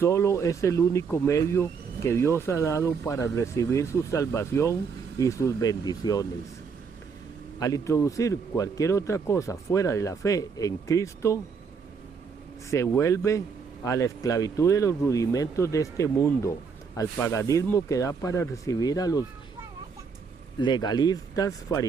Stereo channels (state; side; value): quieter; left; 5.7 dB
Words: es el único medio que Dios ha dado para recibir su salvación y sus bendiciones. Al introducir cualquier otra cosa fuera de la fe en Cristo, se vuelve a la esclavitud de los rudimentos de este mundo, al paganismo que da para recibir a los legalistas